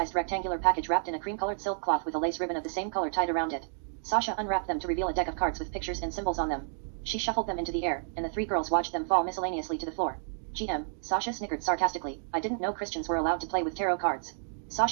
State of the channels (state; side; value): silent; left; digital silence